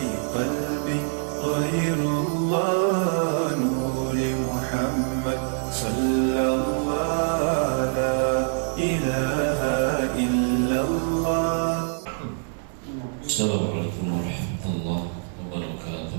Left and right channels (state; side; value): silent; left; digital silence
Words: قلبي غير الله نور محمد صلى الله لا إله إلا الله. السلام عليكم ورحمة الله